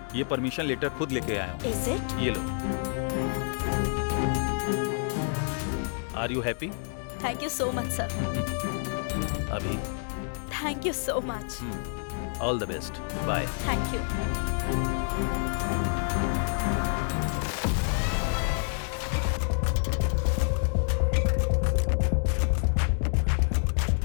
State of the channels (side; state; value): right; silent; 59 dB below the other